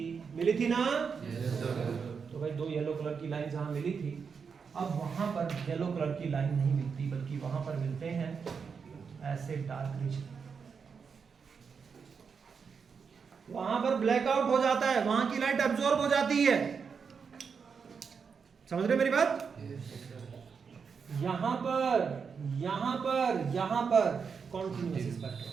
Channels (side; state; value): left; quieter; 5.9 dB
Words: थी ना? तो भाई 2 येलो कलर की लाइन जहां मिली थी, अब वहां पर येलो कलर की लाइन नहीं मिलती, बल्कि वहां पर मिलते हैं ऐसे डार्क रीजन। वहां पर ब्लैकआउट हो जाता है, वहां की लाइट अब्सॉर्ब हो जाती है। समझ रहे मेरी बात? यहां पर कॉन्टिन्यूअस